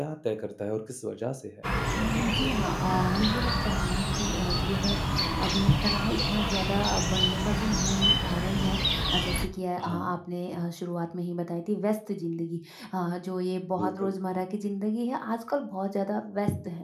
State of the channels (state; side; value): identical; both; correlation 1.00